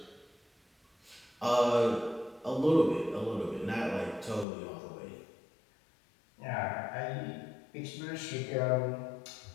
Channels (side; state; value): right; drops out; at 4.5 s